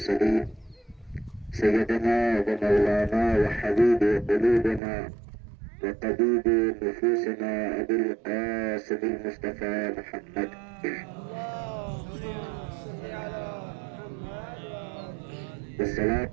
سيدنا ومولانا وحبيب قلوبنا وطبيب نفوسنا أبي القاسم المصطفى محمد.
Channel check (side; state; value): left; drops out; at 4.8 s